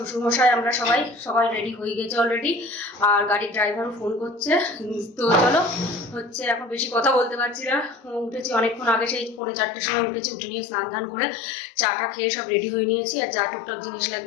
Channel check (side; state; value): right; drops out; at 9.4 s